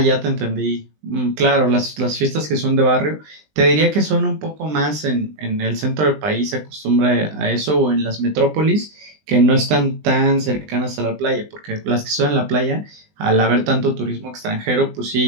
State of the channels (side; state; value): left; late; 20 ms